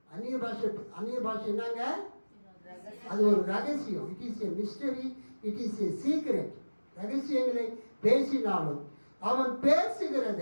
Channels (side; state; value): both; inverted; correlation -1.00